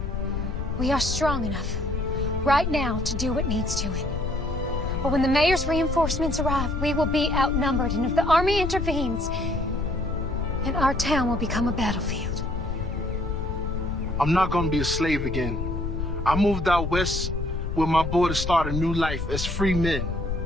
We are strong enough right now to do what needs doing. But when the mayor's reinforcements arrive, we will be outnumbered, and if the Army intervenes, then our town will become a battlefield. I'm not gonna be a slave again. I moved out west with my boy to start a new life as free men.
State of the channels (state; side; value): noise; left; rumble, 3 dB below the sound